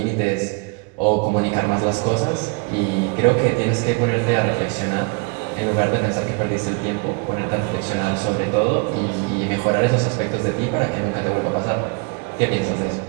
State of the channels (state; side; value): quieter; left; 31.9 dB